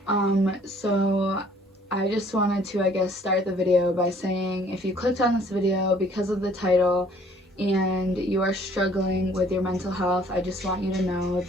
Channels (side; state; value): both; normal; correlation 0.58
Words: So I just wanted to, I guess, start the video by saying if you clicked on this video because of the title and you are struggling with your mental health, I just want you to know